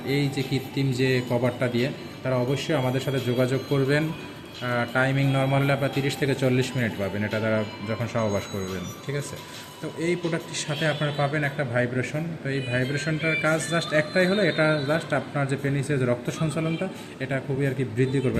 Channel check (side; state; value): both; identical; correlation 1.00